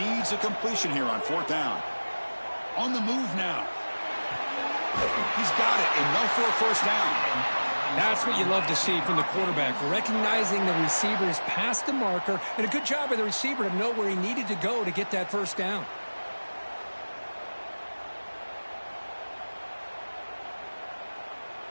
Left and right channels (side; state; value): both; inverted; correlation -1.00